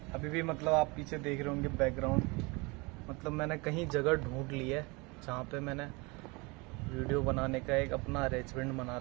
अभी भी मतलब आप पीछे देख रहे होंगे बैकग्राउंड, मतलब मैंने कहीं जगह ढूंढ ली है जहाँ पे मैंने वीडियो बनाने का एक अपना अरेंजमेंट बना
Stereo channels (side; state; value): left; quieter; 26.9 dB